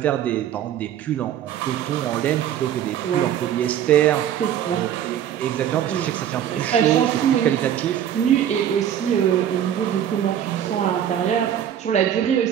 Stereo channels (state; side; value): quieter; left; 10.1 dB